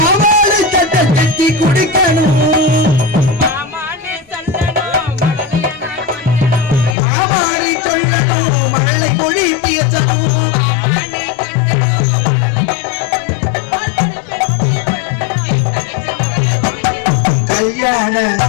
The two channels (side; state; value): right; drops out; at 7.0 s